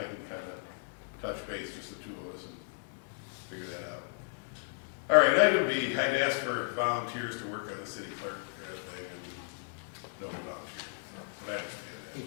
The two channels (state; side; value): silent; right; digital silence